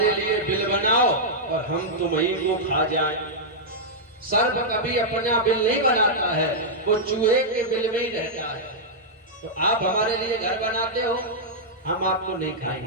लिए बिल बनाओ और हम तुम्हीं को खा जाएं। सर्प कभी अपना बिल नहीं बनाता है, वो चूहे के बिल में ही रहता है। तो आप हमारे लिए घर बनाते हो, हम आपको नहीं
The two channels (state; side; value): normal; both; correlation -0.08